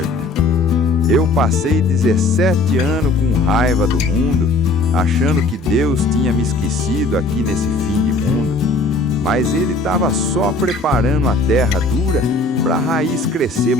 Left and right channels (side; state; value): right; quieter; 3.1 dB